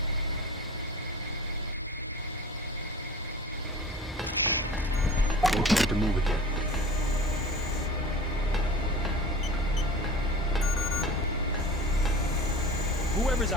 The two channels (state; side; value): normal; both; correlation 0.40